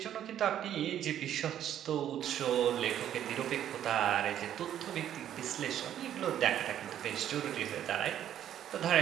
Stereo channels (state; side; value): quieter; left; 10.7 dB